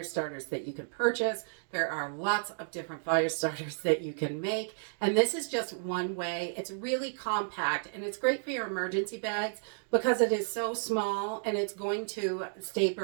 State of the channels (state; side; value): silent; left; digital silence